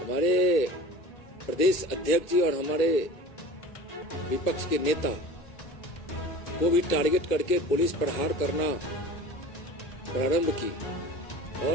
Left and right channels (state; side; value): late; right; 1.8 ms